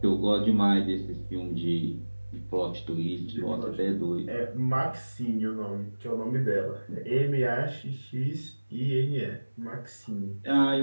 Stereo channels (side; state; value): both; inverted; correlation -1.00